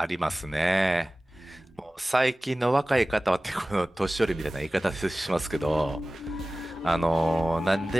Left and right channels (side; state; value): both; normal; correlation 0.97